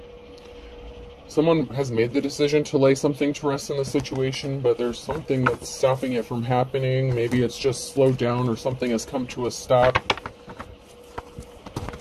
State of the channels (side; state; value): both; identical; correlation 1.00